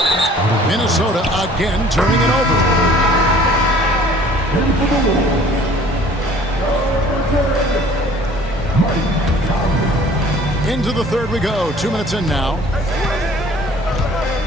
Minnesota again turning it over. Into the third we go. 2 minutes in now.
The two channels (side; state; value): both; normal; correlation 0.52